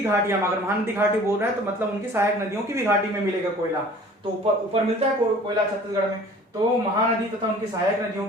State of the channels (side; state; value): both; normal; correlation 0.48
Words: घाटियां, अगर महानदी घाटी बोल रहे हैं तो मतलब उनकी सहायक नदियों की भी घाटी में मिलेगा कोयला, तो ऊपर मिलता है कोयला छत्तीसगढ़ में। तो महानदी तथा उनकी सहायक नदियों